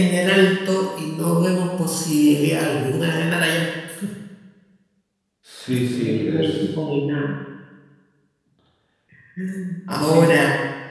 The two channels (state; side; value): identical; both; correlation 1.00